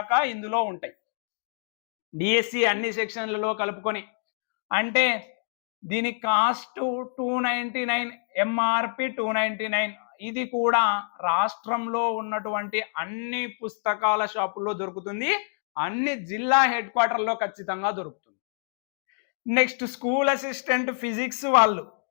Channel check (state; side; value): silent; right; digital silence